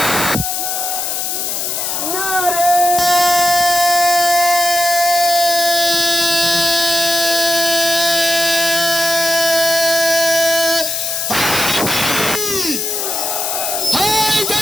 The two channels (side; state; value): left; noise; hiss, 2 dB below the sound